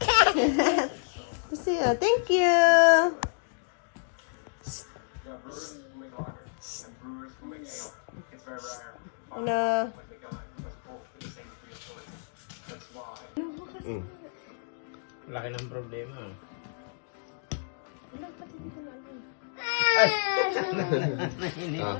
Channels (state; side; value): silent; right; digital silence